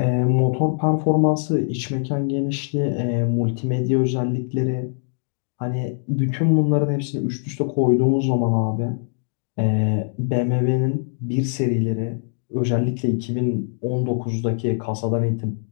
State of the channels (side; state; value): right; silent; digital silence